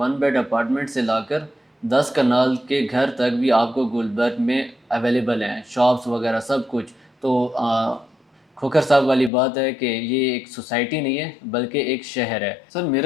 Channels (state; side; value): drops out; right; at 9.3 s